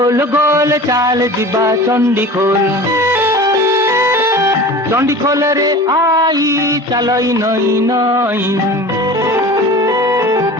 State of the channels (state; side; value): normal; both; correlation 0.37